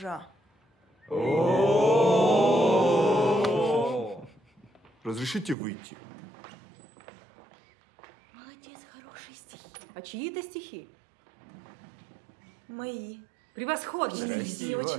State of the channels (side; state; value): left; drops out; at 5.6 s